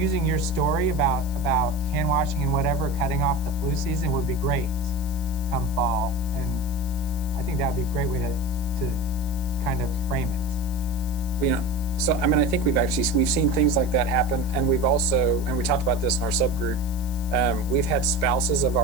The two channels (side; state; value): left; noise; hiss, 17 dB below the sound